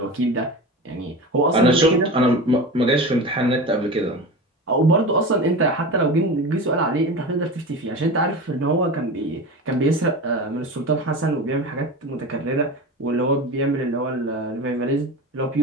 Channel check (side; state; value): both; normal; correlation 0.29